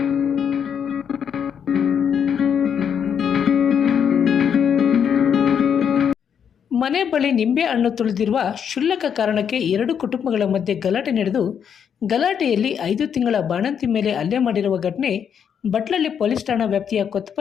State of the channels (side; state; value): right; quieter; 7.8 dB